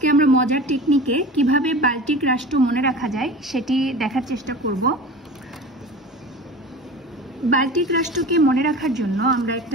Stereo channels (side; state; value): both; normal; correlation 0.35